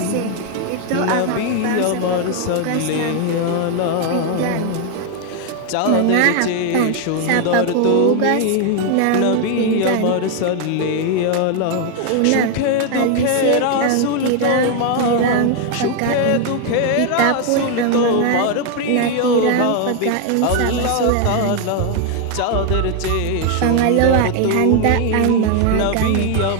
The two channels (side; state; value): both; different; correlation 0.01